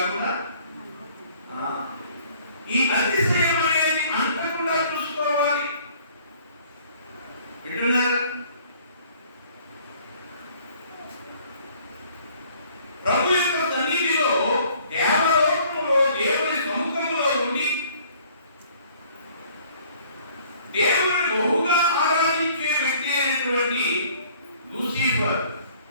ఈ అతిశయం అనేది అంతకుండా చూసుకోవాలి. వింటున్నారా? ప్రభు యొక్క సన్నిధిలో, దేవలోకములో, దేవుని సముఖంలో ఉండి దేవుని బహుగా ఆరాధించే వ్యక్తి అయినటువంటి లూసిఫర్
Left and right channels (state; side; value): inverted; both; correlation -0.57